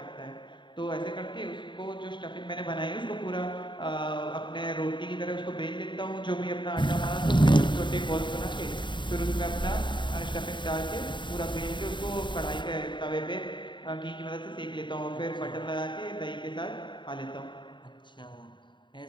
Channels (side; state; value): right; late; 0.23 ms